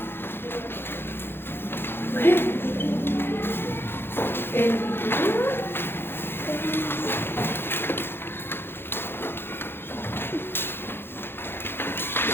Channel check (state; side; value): late; right; 0.11 ms